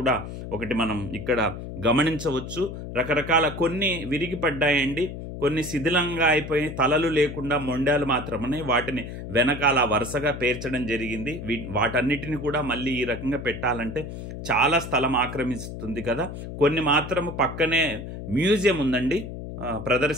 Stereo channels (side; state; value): left; noise; hum, 9 dB below the sound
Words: ఒకటి మనం ఇక్కడ గమనించవచ్చు. రకరకాల కొన్ని విరిగిపడ్డాయండి, కొన్ని శిథిలంగా అయిపోయి తలలు లేకుండా మొండాలు మాత్రమే, వాటిని వెనకాల వరుసగా పేర్చడం జరిగింది. వాటన్నిటిని కూడా మళ్ళీ ఈ రకంగా పెట్టాలంటే చాలా స్థలం ఆక్రమిస్తుంది కదా. కొన్ని మాత్రము పక్కనే మ్యూజియం ఉందండి,